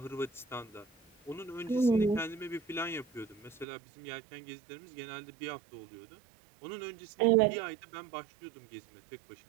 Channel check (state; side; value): drops out; left; at 3.7 s